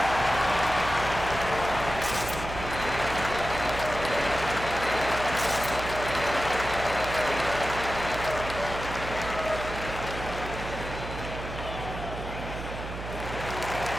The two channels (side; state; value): right; noise; hum, 8 dB below the sound